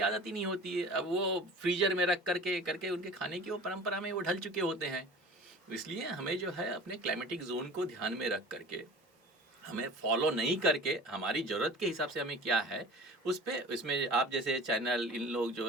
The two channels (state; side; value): normal; both; correlation 0.40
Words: आदत ही नहीं होती है। अब वो फ्रीजर में रख करके उनके खाने की वो परंपरा में वो ढल चुके होते हैं। इसलिए हमें जो है अपने क्लाइमेटिक जोन को ध्यान में रख करके, हमें फॉलो नहीं करके, हमारी ज़रूरत के हिसाब से हमें क्या है उस पे, इसमें आप जैसे चैनल, इन लोग